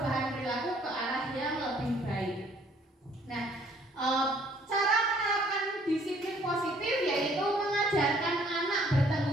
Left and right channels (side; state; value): both; normal; correlation 0.61